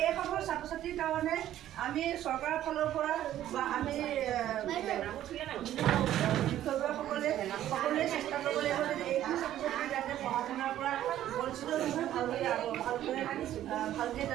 এইসকল ছাত্ৰ ছাত্ৰীৰ কাৰণে আমি চৰকাৰৰ ফালৰ পৰা বা আমি বিষয়ববীয়াসকলে সকলোৱে চেষ্টা কৰিব লাগিব যে এইখিনি ছাত্ৰ ছাত্ৰী যাতে পঢ়া শুনাৰ পৰা বঞ্চিত নহয় ভালকৈ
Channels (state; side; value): quieter; left; 12.4 dB